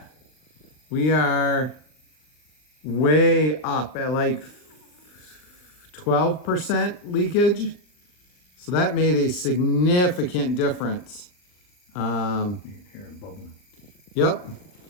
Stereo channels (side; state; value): right; late; 39 ms